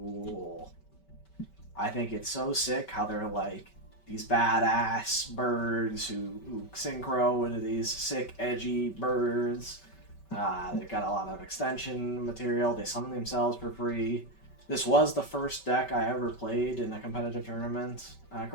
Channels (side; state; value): right; late; 5.2 ms